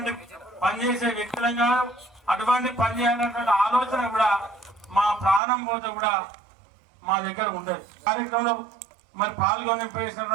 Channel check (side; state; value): left; drops out; at 5.4 s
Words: పని చేసే వ్యక్తులం కాదు. అటువంటి పని చేయాలన్నటువంటి ఆలోచన కూడా మా ప్రాణం పోతే కూడా మా దగ్గర ఉంటుంది. కార్యక్రమంలో మరి పాల్గొని